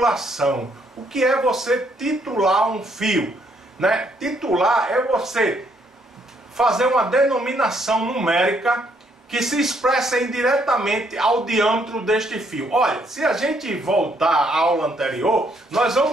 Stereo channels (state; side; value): normal; both; correlation 0.70